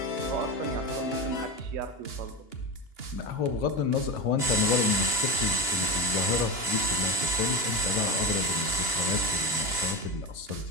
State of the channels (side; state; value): right; late; 2.9 ms